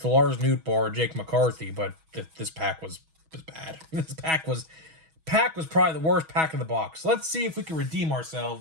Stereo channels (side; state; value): left; late; 6.2 ms